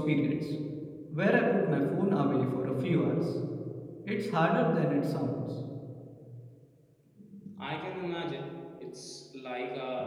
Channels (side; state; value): both; identical; correlation 1.00